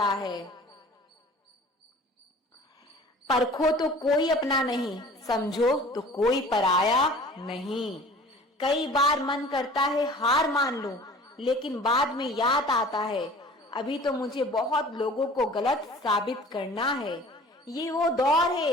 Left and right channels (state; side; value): normal; both; correlation 0.46